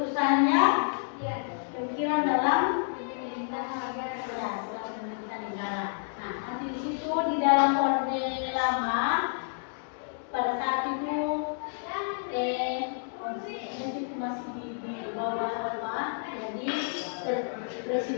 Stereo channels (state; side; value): silent; right; digital silence